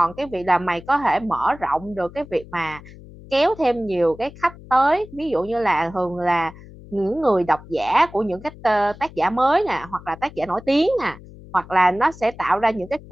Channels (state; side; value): noise; left; hum, 19 dB below the sound